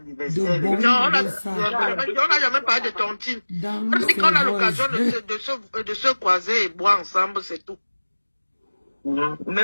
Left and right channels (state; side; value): inverted; both; correlation -1.00